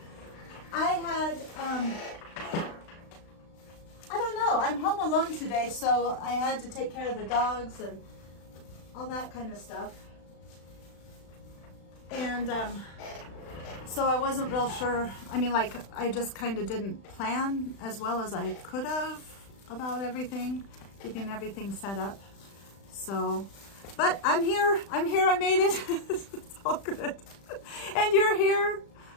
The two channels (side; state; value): right; late; 36 ms